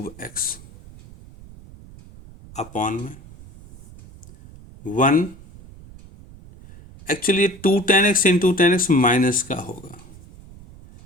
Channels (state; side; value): noise; right; rumble, 20 dB below the sound